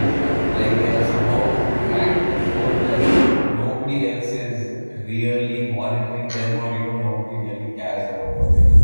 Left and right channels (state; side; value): inverted; both; correlation -1.00